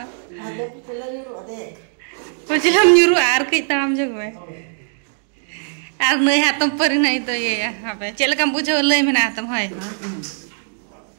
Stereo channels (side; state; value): left; silent; 66 dB below the other